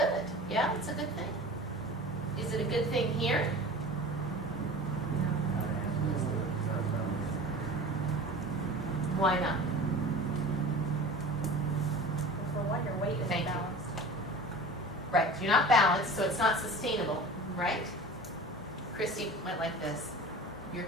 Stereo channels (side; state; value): both; normal; correlation 0.37